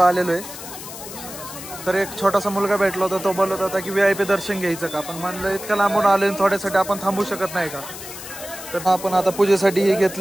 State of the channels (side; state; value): left; noise; hiss, 12 dB below the sound